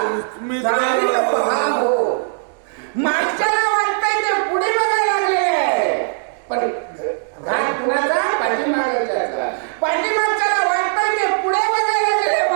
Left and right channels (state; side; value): silent; left; digital silence